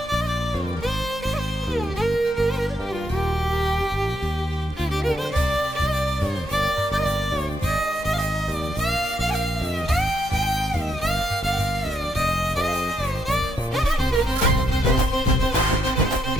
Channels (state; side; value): normal; both; correlation 0.76